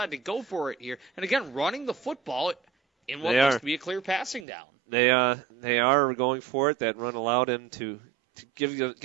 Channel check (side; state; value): left; drops out; at 4.5 s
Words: to go for it here. And again, running the football in what looks to be a clear passing down. They are going for it. That run allowed him to